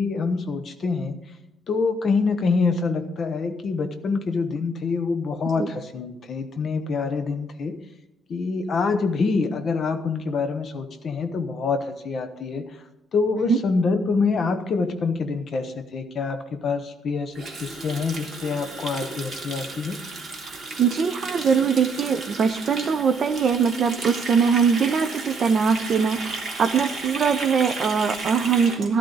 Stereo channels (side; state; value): both; normal; correlation 0.68